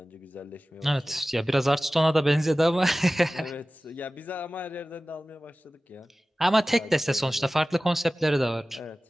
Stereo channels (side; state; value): both; normal; correlation 0.97